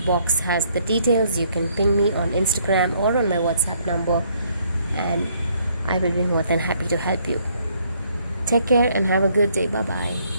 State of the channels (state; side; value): inverted; both; correlation -0.67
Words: box has the details. You can ping me on Instagram or on my WhatsApp number, and I will be more than happy to help you. Take care and have a good day. Bye bye.